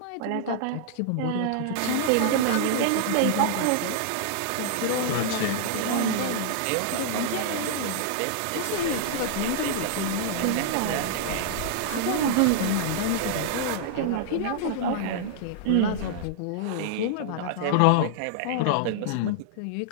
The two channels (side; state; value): both; different; correlation -0.01